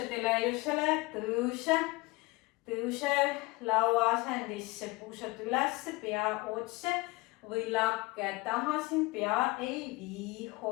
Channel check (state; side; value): quieter; right; 23.0 dB